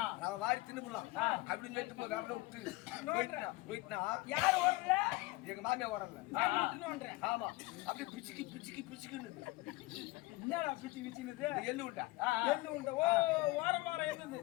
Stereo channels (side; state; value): right; quieter; 21.1 dB